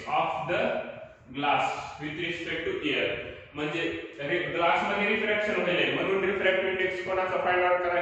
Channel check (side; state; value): both; identical; correlation 1.00